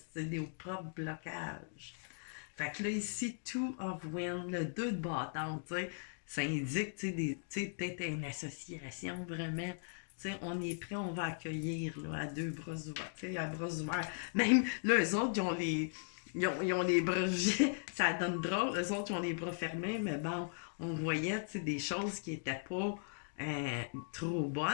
sais, des propres blocages. Fait que là, ici, two of wind, le 2 de bâton, tu sais, ça indique, tu sais, peut-être une association, vraiment. Tu sais, on est prêt, on va accueillir, là, à deux bras ouverts, tu sais, à bras ouverts. Même, là, eux autres, ils ont les bras, ça donne drôle, eux autres, ils ont les bras fermés, mais bon, on voyait, tu sais, des choses qui étaient pas trop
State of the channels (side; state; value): right; silent; digital silence